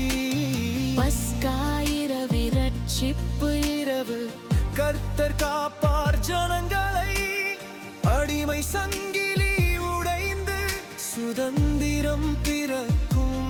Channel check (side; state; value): both; identical; correlation 1.00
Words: பஸ்கா இரவு, ரட்சிப்பு இரவு, கர்த்தர் காப்பார் ஜனங்களை. அடிமை சங்கிலி உடைந்து சுதந்திரம்